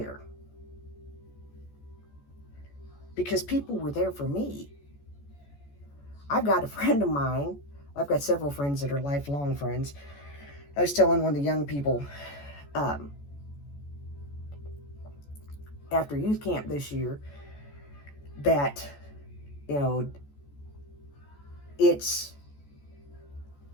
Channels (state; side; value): late; right; 14 ms